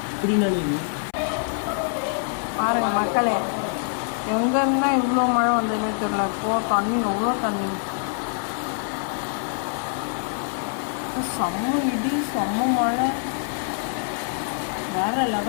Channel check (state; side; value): silent; right; 62 dB below the other